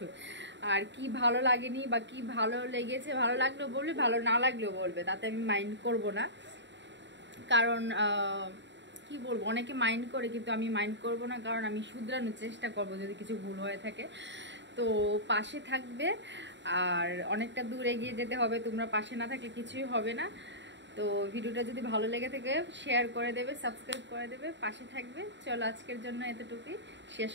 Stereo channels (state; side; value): late; left; 0.52 ms